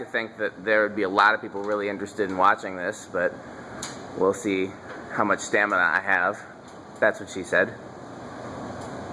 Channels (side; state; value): both; identical; correlation 1.00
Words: think that there would be a lot of people really interested in watching this, but we'll see how much stamina I have. That's what she said.